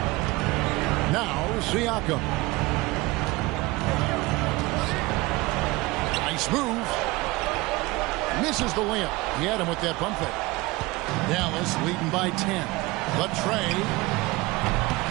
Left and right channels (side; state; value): left; quieter; 21.6 dB